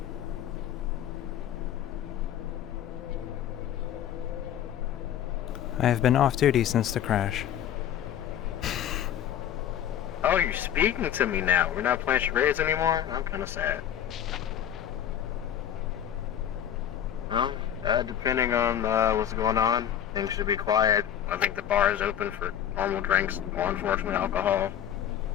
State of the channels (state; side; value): quieter; right; 10.3 dB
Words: I have been off duty since the crash. Oh, you're speaking to me now. We're not playing charades anymore? I'm kind of sad. Well, depending on what's going on, things should be quiet. I think the bar is open for normal drinks, or unfortunately alcohol.